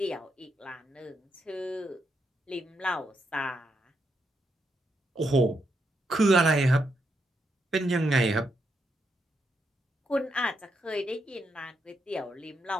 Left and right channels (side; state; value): both; normal; correlation 0.81